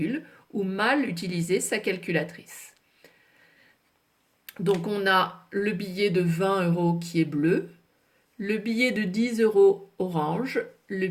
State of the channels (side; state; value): both; identical; correlation 1.00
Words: ou mal utiliser sa calculatrice. Donc on a le billet de 20 € qui est bleu, le billet de 10 € orange, le